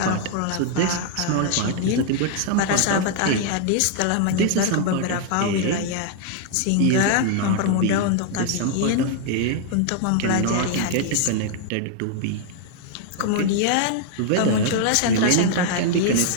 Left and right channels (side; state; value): both; different; correlation 0.00